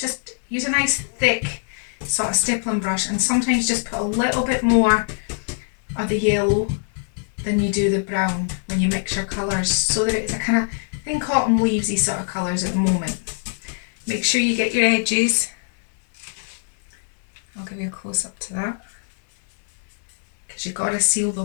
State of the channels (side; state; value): right; silent; 60 dB below the other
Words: use a nice thick sort of stippling brush, and sometimes just put a little bit more of the yellow than you do the brown when you mix your colours, so that it's a kind of, think autumn leavesy sort of colours at the moment. Make sure you get your edges. I'll give you a close up to that, because you've got to seal the